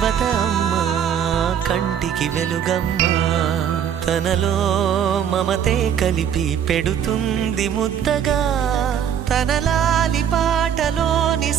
అమ్మా కంటికి వెలుగమ్మా తనలో మమతే కలిపి పెడుతుంది ముద్దగా తన లాలి పాటలోని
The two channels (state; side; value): quieter; left; 8.8 dB